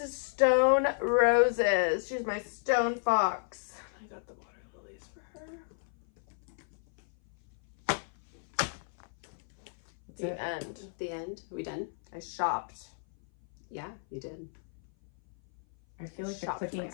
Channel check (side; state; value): right; silent; 56 dB below the other